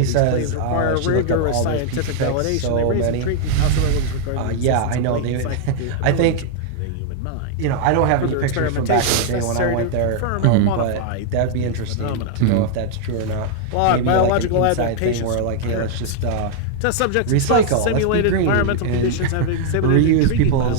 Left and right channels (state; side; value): different; both; correlation -0.01